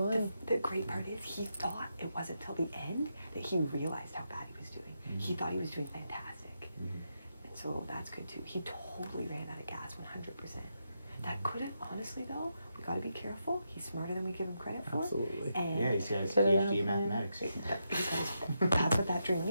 the great part is he thought it wasn't till the end that he realized how bad he was doing. He thought he was doing fantastic. And so that's good too. He totally ran out of gas 100%. That could have, honestly though, we gotta be careful. He's smarter than we give him credit for. Absolutely. And Yeah, he's got his Could've PhD in been. mathematics. because that's what that dream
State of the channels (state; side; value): inverted; both; correlation -0.84